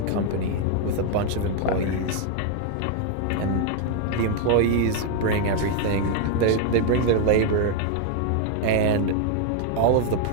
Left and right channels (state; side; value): different; both; correlation 0.01